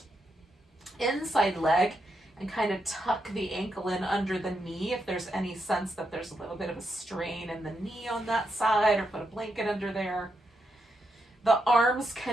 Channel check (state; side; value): normal; both; correlation 0.82